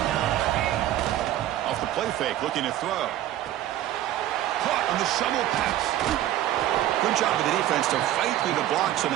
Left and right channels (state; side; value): quieter; left; 13.1 dB